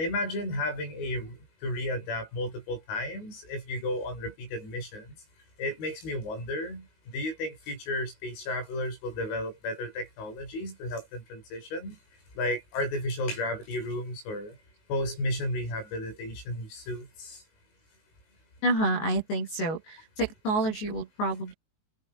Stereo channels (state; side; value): late; right; 19 ms